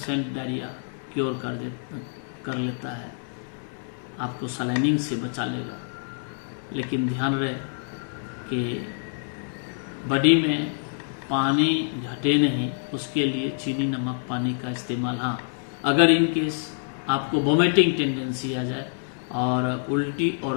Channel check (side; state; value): right; silent; digital silence